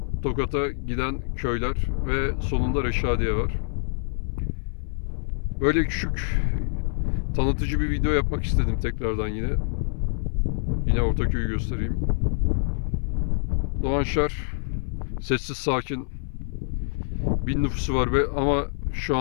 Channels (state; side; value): silent; right; 61 dB below the other